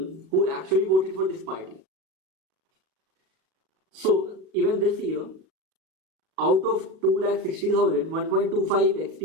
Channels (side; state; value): left; late; 37 ms